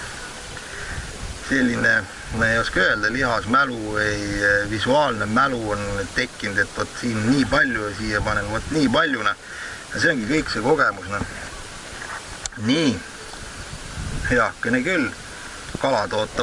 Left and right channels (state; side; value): identical; both; correlation 1.00